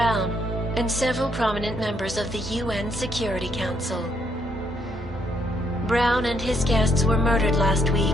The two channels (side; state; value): both; normal; correlation 0.73